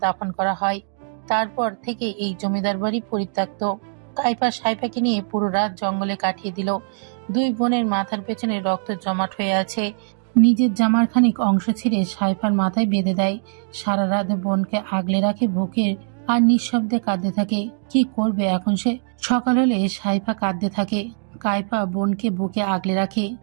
দাফন করা হয়। তারপর থেকে এই জমিদার বাড়ি পরিত্যক্ত। কাইফা সাইফাকে নিয়ে পুরো রাত জঙ্গলে কাটিয়ে দিল। 2 বোনের মাথার পেছনে রক্ত জমাট হয়ে আছে। নিজের জামার খানিক অংশ ছিঁড়ে সাইফার মাথায় বেঁধে দেয়। সারা রাত বোনকে আগলে রাখে বুকে, আর নিঃশব্দে কাঁদতে থাকে। কি করবে এখন সে? সকাল হলে সাইফা কাঁদতে থাকে। কাইফা বোনকে বুকে আগলে রাখে।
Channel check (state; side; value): silent; left; digital silence